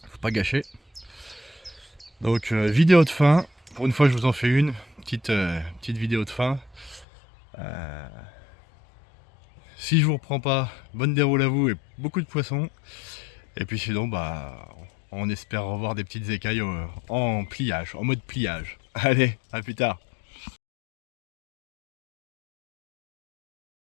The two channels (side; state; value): right; drops out; at 7.1 s